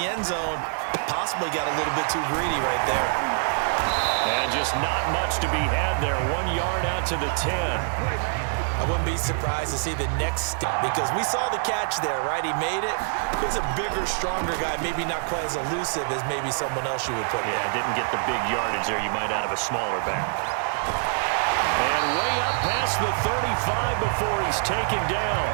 end zone. Possibly got a little bit too greedy right there. And just not much to be had there. 1 yard out to the 10. I wouldn't be surprised to see the next step because we saw the catch there, right? He made it. He's a bigger, stronger guy, maybe not quite as elusive as maybe someone else you would put Yeah, didn't get the big yardage there you might out of a smaller back. And way up past the 35 before he's taken down.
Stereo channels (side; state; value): left; silent; 60 dB below the other